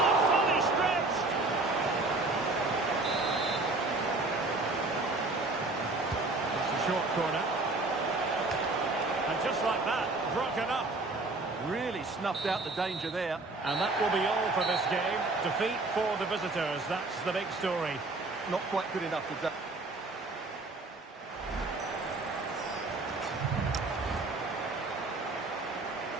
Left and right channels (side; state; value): left; quieter; 3.2 dB